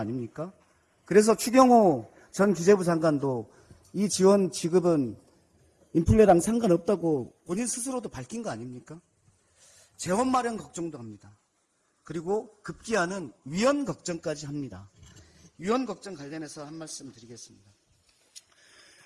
그래서 추경호 전 기재부 장관도 이 지원 지급은 인플레랑 상관없다고 본인 스스로도 밝힌 거 아닙니까? 재원 마련 걱정도 합니다. 그리고 급기야는 위헌 걱정까지 합니다. 위헌 걱정 관련해서 한 말씀 드리겠습니다.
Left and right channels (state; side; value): identical; both; correlation 1.00